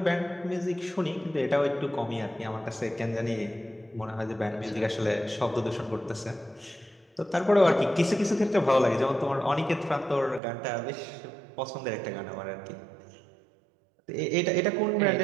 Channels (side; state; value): left; drops out; at 10.4 s